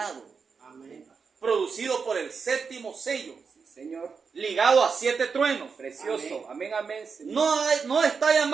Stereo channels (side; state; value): left; quieter; 5.5 dB